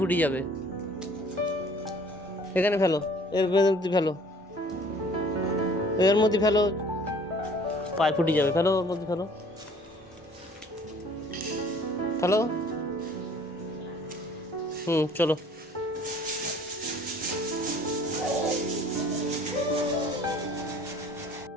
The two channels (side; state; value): both; normal; correlation 0.53